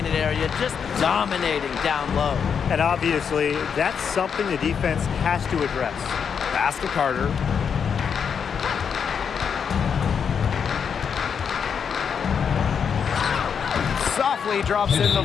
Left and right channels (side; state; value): right; quieter; 6.9 dB